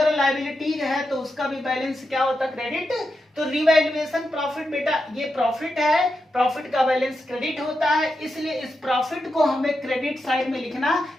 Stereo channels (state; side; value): normal; both; correlation 0.87